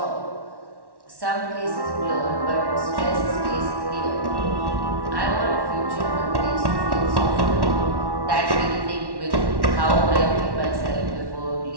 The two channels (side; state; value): left; late; 1.1 ms